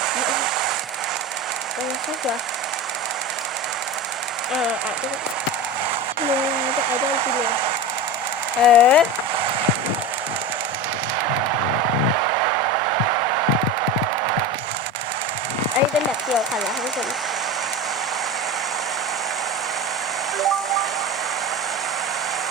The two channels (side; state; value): both; normal; correlation 0.26